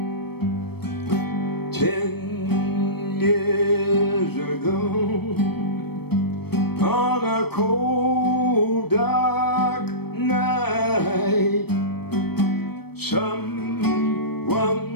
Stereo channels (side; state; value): right; late; 0.97 ms